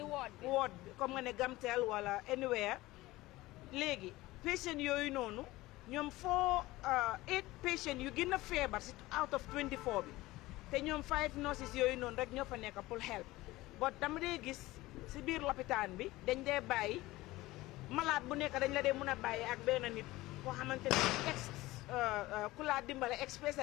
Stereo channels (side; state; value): right; quieter; 18.7 dB